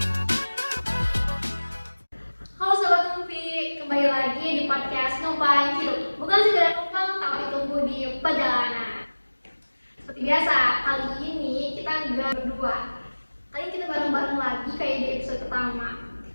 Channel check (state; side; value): inverted; both; correlation -1.00